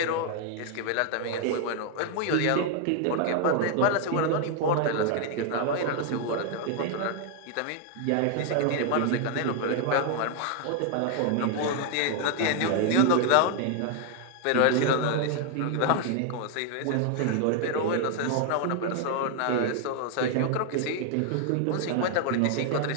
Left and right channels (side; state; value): both; different; correlation 0.00